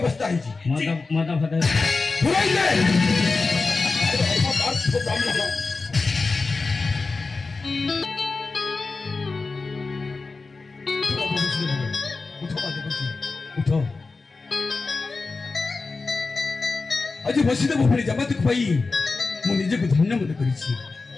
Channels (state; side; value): quieter; right; 3.9 dB